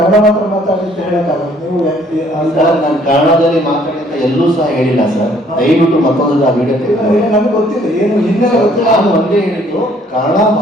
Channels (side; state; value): both; normal; correlation 0.61